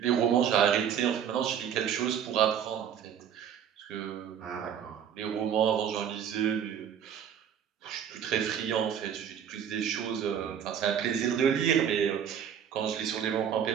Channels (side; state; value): left; quieter; 8.6 dB